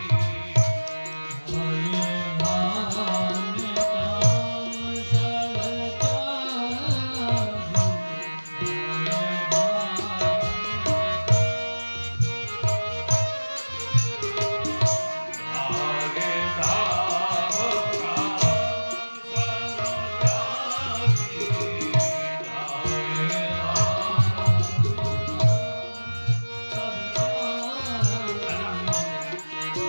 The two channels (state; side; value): inverted; both; correlation -1.00